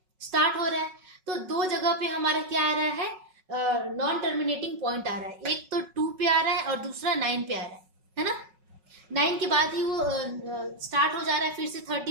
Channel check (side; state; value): left; late; 5.4 ms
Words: स्टार्ट हो रहा है, तो 2 जगह पे हमारा क्या आ रहा है, नॉन टर्मिनेटिंग पॉइंट आ रहा है। एक तो 2 पे आ रहा है और दूसरा 9 पे आ रहा है ना। 9 के बाद ही वो स्टार्ट हो जा रहा है फिर से